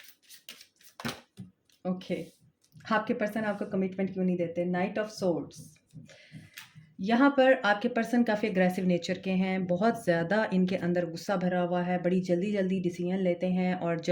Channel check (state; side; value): identical; both; correlation 1.00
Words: ओके, आपके पर्सन आपको कमिटमेंट क्यों नहीं देते। Night of swords. यहाँ पर आपके पर्सन काफ़ी अग्रेसिव नेचर के हैं, बहुत ज़्यादा इनके अंदर गुस्सा भरा हुआ है, बड़ी जल्दी जल्दी डिसीजन लेते हैं और